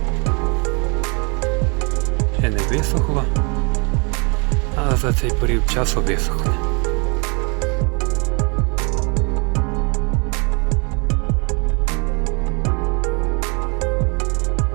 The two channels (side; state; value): left; quieter; 32.8 dB